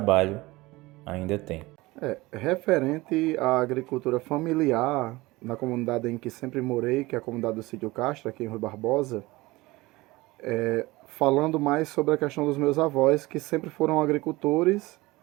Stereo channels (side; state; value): left; quieter; 20.9 dB